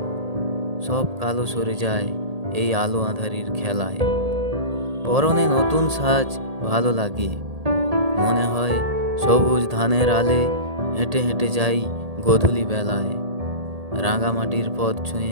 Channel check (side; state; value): left; late; 1.8 ms